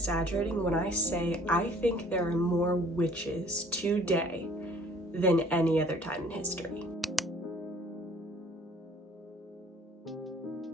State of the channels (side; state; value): both; normal; correlation 0.54